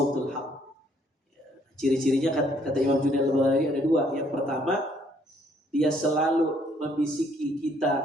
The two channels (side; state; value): both; normal; correlation 0.66